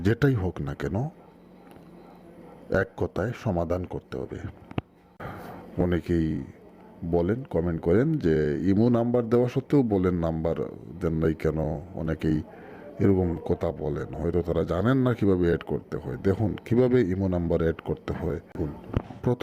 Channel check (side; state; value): both; identical; correlation 1.00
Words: যেটাই হোক না কেন, এক কথায় সমাধান করতে হবে। অনেকেই বলেন, কমেন্ট করেন যে ইমো নাম্বার দেওয়া সত্ত্বেও বলেন নাম্বার দেন নাই কেন। অনেকেই এরকম কথা বলেন, হয়তো তারা জানেন না কিভাবে অ্যাড করতে হয়। দেখুন কিভাবে ইমো নাম্বার অ্যাড করতে হয়।